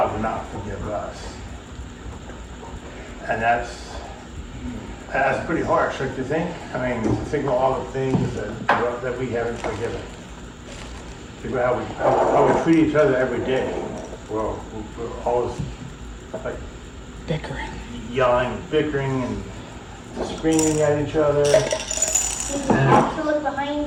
will not forgive us. And that's pretty harsh, don't you think? I mean, think of all the things that we haven't forgiven. Think about how we treat each other every day. Well, we're always like Bickering. yelling, bickering, and screaming at each other. Did you have to look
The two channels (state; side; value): identical; both; correlation 1.00